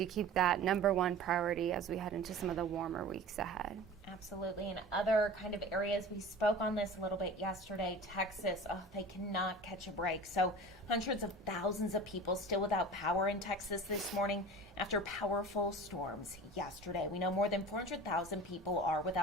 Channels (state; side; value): normal; both; correlation 0.37